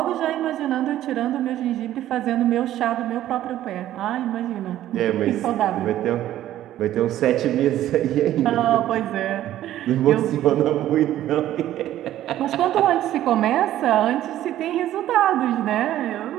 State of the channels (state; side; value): quieter; left; 13.0 dB